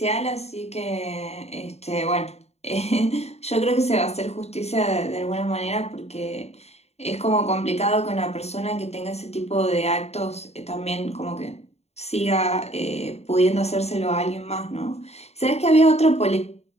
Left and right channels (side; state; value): right; late; 0.31 ms